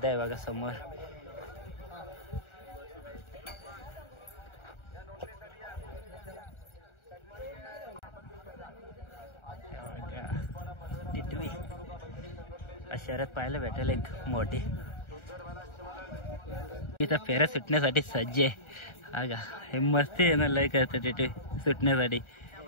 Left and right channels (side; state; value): right; late; 1.4 ms